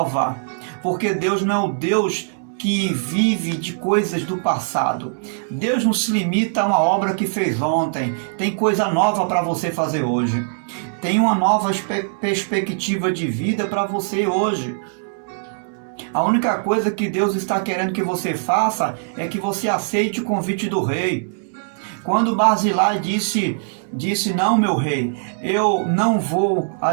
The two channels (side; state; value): left; silent; digital silence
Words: Porque Deus não é o Deus que vive de coisas do passado. Deus não se limita a uma obra que fez ontem. Tem coisa nova para você fazer hoje. Tem uma nova perspectiva de vida para você hoje. A única coisa que Deus está querendo que você faça é que você aceite o convite do rei. Quando Barzilai disse, não, meu rei, eu não vou